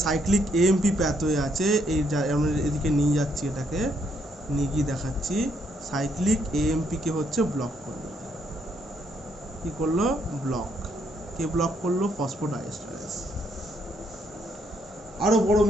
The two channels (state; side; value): normal; both; correlation 0.73